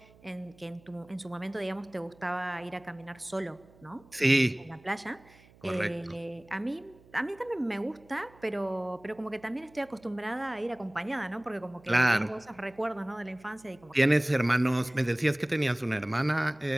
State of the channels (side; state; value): right; noise; hum, 26 dB below the sound